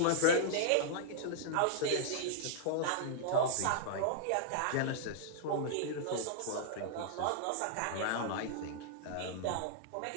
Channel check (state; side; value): different; both; correlation -0.01